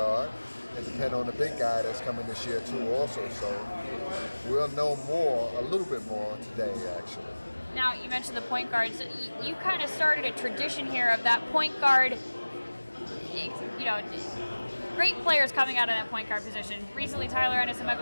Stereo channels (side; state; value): both; inverted; correlation -1.00